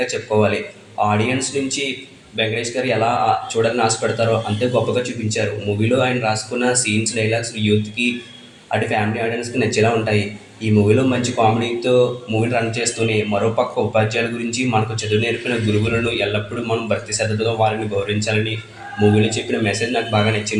చెప్పుకోవాలి. ఆడియన్స్ నుంచి వెంకటేష్ గారు ఎలా చూడాలని ఆశపడతారో అంతే గొప్పగా చూపించారు. మూవీలో ఆయన రాసుకున్న సీన్స్, డైలాగ్స్ యూత్కి అటు ఫ్యామిలీ ఆడియన్స్కి నచ్చేలా ఉంటాయి. ఈ మూవీలో మంచి కామెడీతో మూవీని రన్ చేస్తూనే మరోపక్క ఉపాధ్యాయుల గురించి, మనకు చదువు నేర్పిన గురువులను ఎల్లప్పుడూ మనం భక్తి శ్రద్ధతో వారిని గౌరవించాలని మూవీలో చెప్పిన మెసేజ్ నాకు బాగా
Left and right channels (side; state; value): both; identical; correlation 1.00